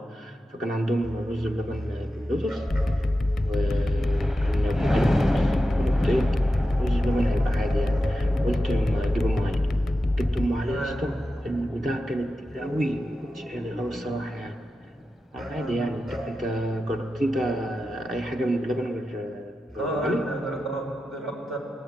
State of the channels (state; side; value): normal; both; correlation 0.91